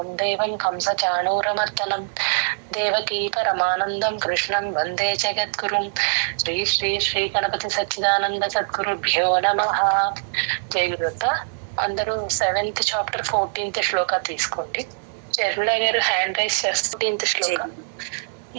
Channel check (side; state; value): left; silent; digital silence